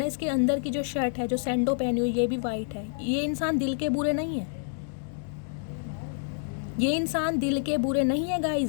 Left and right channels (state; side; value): silent; right; 58 dB below the other